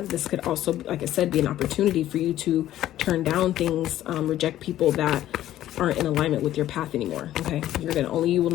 This could also, like I said, be an opportunity for you to turn down things, reject people that aren't in alignment with your path anymore. Okay, only you will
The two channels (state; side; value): quieter; right; 13.1 dB